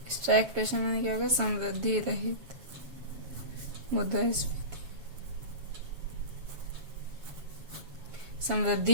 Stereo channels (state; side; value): late; left; 7.2 ms